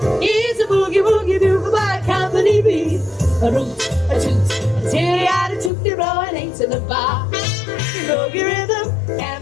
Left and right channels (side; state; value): right; drops out; at 5.7 s